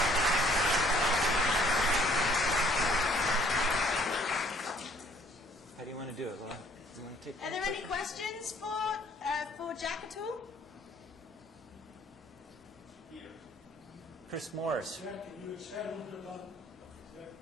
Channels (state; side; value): normal; both; correlation 0.60